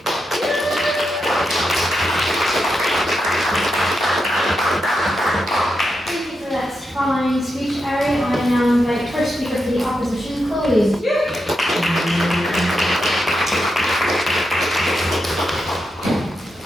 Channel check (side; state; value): both; normal; correlation 0.86